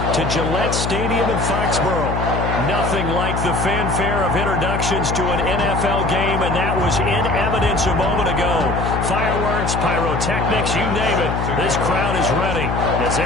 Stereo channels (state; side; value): noise; left; hum, 2 dB below the sound